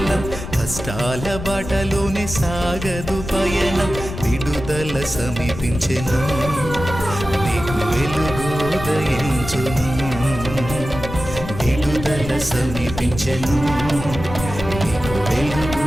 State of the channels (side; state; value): left; noise; rumble, 9 dB below the sound